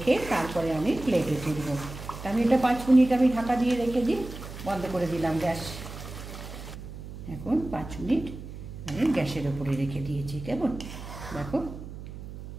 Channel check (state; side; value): noise; right; hum, 11 dB below the sound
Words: তারপরে আমি প্লেটে তুলব। আমি এটা 5 মিনিট আমি ঢাকা দিয়ে রেখে দিই, বন্ধ করে দিলাম গ্যাস। এখন 5 মিনিট আমি গ্যাসের ওপরে রেখে দিয়েছি। কেমন দেখো,